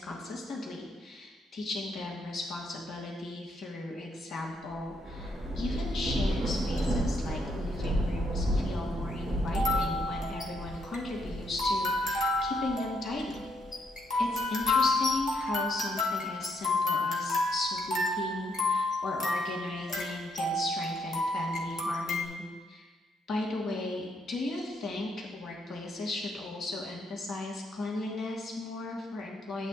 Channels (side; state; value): both; normal; correlation 0.75